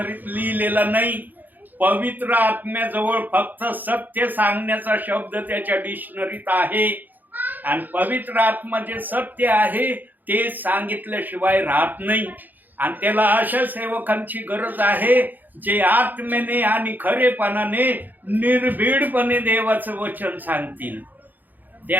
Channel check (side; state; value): left; late; 0.086 ms